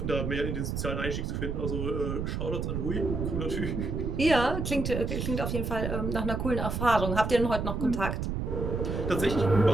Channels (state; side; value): noise; right; rumble, 2 dB below the sound